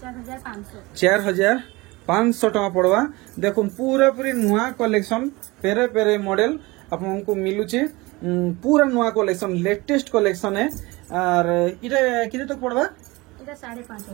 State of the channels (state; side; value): quieter; left; 22.8 dB